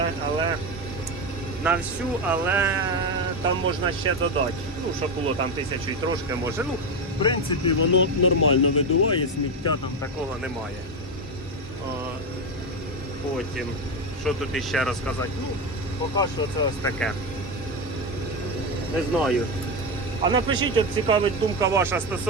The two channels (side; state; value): both; normal; correlation 0.13